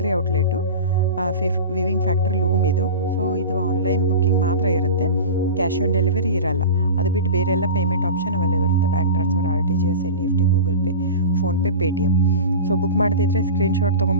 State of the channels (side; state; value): both; inverted; correlation -0.30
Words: outlet, viewing factory loom ಇದು. ಸೊ ಇದು ಆನ್ಲೈನ್ ಬುಕ್ಕಿಂಗ್ ಮಾತ್ರ ಇರುತ್ತೆ, ಕ್ಯಾಶ್ ಆನ್ ಡೆಲಿವರಿ ಇರಲ್ಲ. ಅದು ಬಿಟ್ಟು ಬೇರೆ ಎಲ್ಲ ಪೇಮೆಂಟ್ ಆಪ್ಷನ್ ಅವೈಲೇಬಲ್ ಇರುತ್ತೆ. Bank transfer, RTGS, NEFT, Google pay, PhonePe, Paytm. So book ಮಾಡ್ತಿದ್ರೆ ಸ್ಕ್ರೀನ್ಶಾಟ್